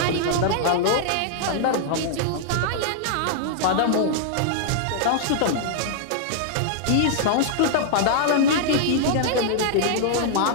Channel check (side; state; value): both; different; correlation -0.01